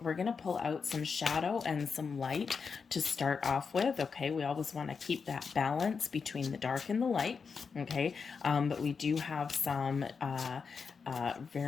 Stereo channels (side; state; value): right; quieter; 5.5 dB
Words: some shadow and some light to start off with. Okay, we always want to keep that balance between the dark and the light. Okay, but we do have some